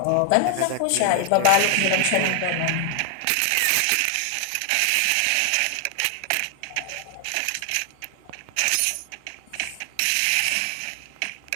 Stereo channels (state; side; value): different; both; correlation 0.00